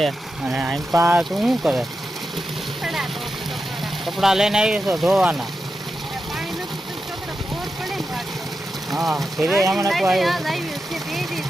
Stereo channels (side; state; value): both; normal; correlation 0.89